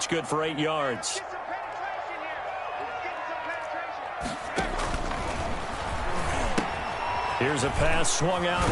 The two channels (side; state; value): both; identical; correlation 1.00